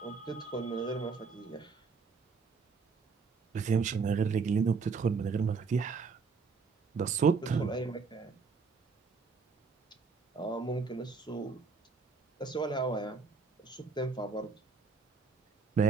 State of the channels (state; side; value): quieter; left; 4.9 dB